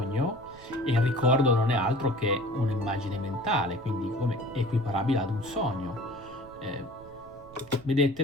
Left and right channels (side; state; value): right; noise; rumble, 22 dB below the sound